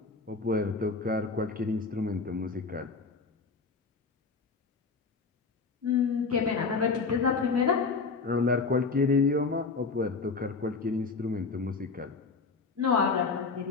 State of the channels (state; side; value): quieter; right; 4.5 dB